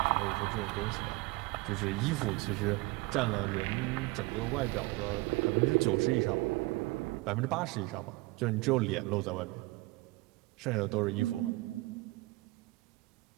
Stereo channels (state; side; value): quieter; left; 22.3 dB